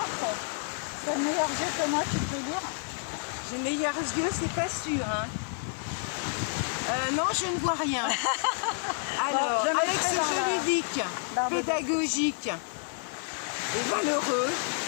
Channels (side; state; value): right; silent; 58 dB below the other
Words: c'est le meilleur jeu que moi, tu peux lire. J'ai meilleurs yeux, c'est pas sûr. Hein. Non, je ne vois rien. Alors, Bon, avec ce jeu ludique, pédagogique et valeureux,